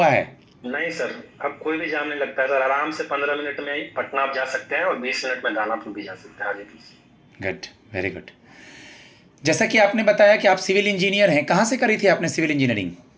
है? नहीं सर, अब कोई भी जाम नहीं लगता है सर। आराम से 15 मिनट में पटना आप जा सकते हैं और 20 मिनट में दानापुर भी जा सकते हैं हाजीपुर से। Good, very good. जैसा कि आपने बताया कि आप सिविल इंजीनियर हैं, कहाँ से करी थी आपने civil engineering?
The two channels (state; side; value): identical; both; correlation 1.00